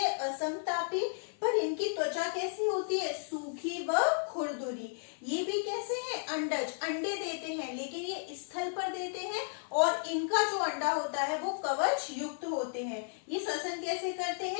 असमतापी, पर इनकी त्वचा कैसी होती है, सूखी व खुरदुरी। ये भी कैसे हैं, अंडज, अंडे देते हैं लेकिन ये स्थल पर देते हैं और इनका जो अंडा होता है वो कवच युक्त होते हैं। ये श्वसन कैसे करते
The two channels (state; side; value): silent; right; 55 dB below the other